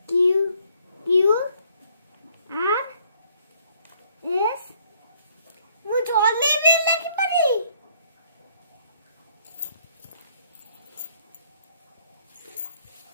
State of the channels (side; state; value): both; inverted; correlation -0.65